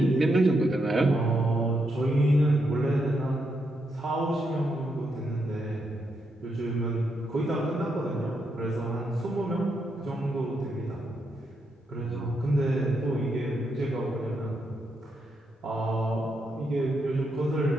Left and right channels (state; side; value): normal; both; correlation 0.81